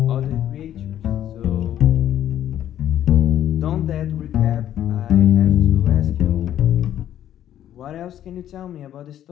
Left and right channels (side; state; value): right; quieter; 11.3 dB